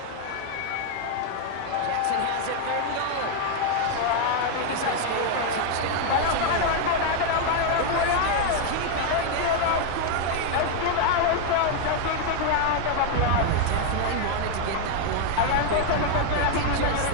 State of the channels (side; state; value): both; different; correlation 0.00